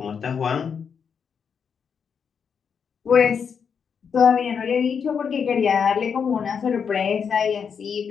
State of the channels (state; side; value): quieter; right; 6.7 dB